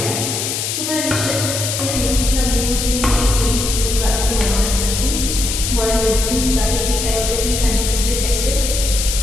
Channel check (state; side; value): noise; left; hiss, 2 dB below the sound